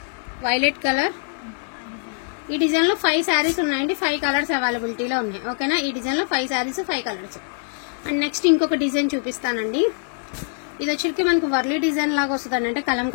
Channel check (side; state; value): right; silent; 58 dB below the other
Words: కలర్. ఈ డిజైన్ లో 5 శారీస్ ఉన్నాయండి. 5 కలర్స్ అవైలబిలిటీలో ఉన్నాయి, ఓకేనా. ఈ డిజైన్ లో 5 శారీస్ 5 కలర్స్. అండ్ నెక్స్ట్ ఇంకొక డిజైన్ చూపిస్తానండి. ఇది వచ్చరికి మనకి వర్లీ డిజైన్ లాగా వస్తుంది, అంటే